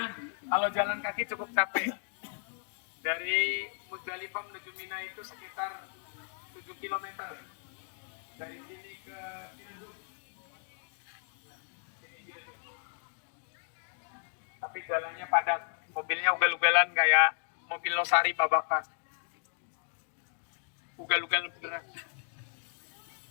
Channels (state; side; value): silent; right; 55 dB below the other